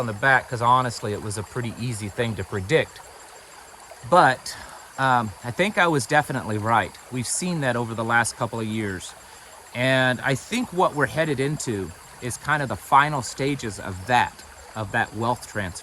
the back, because honestly it was a pretty easy thing to predict. But I think I was definitely right. We've seen that over the last couple of years. And I think what we're headed into is kind of the final stages of that wealth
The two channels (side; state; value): both; identical; correlation 1.00